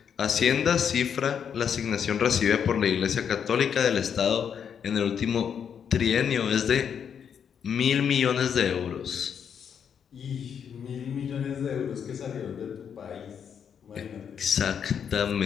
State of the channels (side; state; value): right; quieter; 7.7 dB